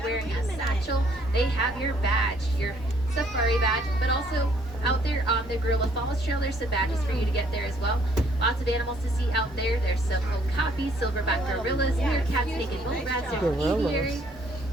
a satchel. They have your badge, your safari badge, but also out there on the Gorilla Falls Trail, there's some badges for you to get there as well. Lots of animals to see out there. There's some okapi, silverback gorillas, meerkats, naked bull rats, there's an aviary.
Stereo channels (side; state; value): both; normal; correlation 0.64